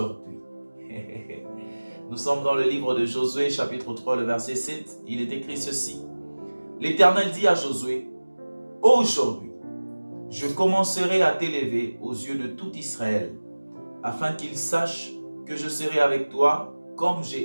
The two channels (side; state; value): both; inverted; correlation -1.00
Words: ». Nous sommes dans le livre de Josué, chapitre 3, le verset 7. Il est écrit ceci. L'Éternel dit à Josué, « Aujourd'hui, je commencerai à t'élever aux yeux de tout Israël, afin qu'ils sachent que je serai avec toi comme